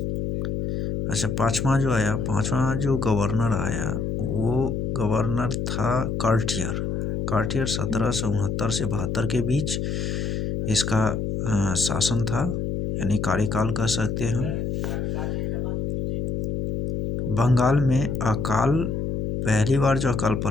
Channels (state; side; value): noise; left; hum, 2 dB below the sound